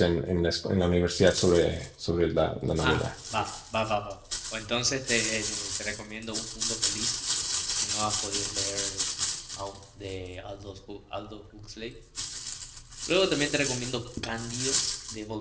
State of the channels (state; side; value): identical; both; correlation 1.00